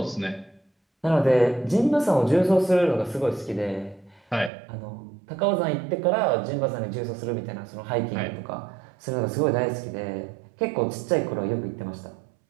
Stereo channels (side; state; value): left; drops out; at 4.5 s